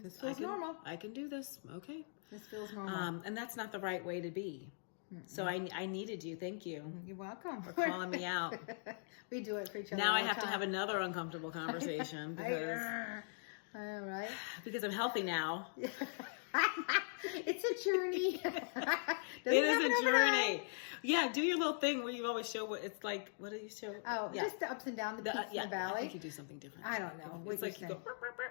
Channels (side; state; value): right; silent; digital silence